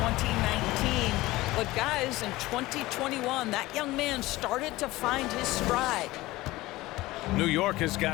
2019. But guys, in 2021, that young man started to find his stride. New York has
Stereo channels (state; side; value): quieter; right; 18.8 dB